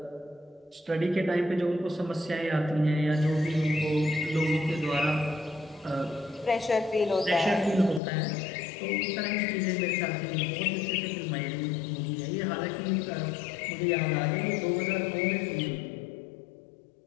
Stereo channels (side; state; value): right; drops out; at 8.0 s